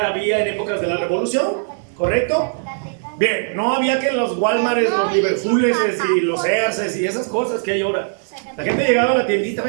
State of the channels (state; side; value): silent; left; digital silence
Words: en épocas de la Revolución, ¿correcto? Bien, no había que los Walmarts, los Liverpooles y los Sears y esas cosas que hay ahora. La gente llegaba a la tiendita,